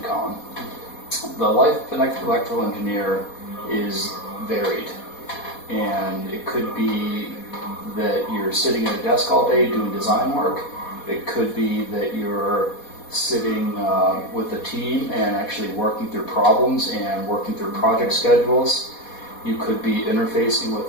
Collin. The life of an electrical engineer is varied. And it could be that you're sitting at a desk all day doing design work. It could be that you're sitting with a team and actually working through problems and working through project schedules. You could be interfacing with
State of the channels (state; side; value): late; right; 4.2 ms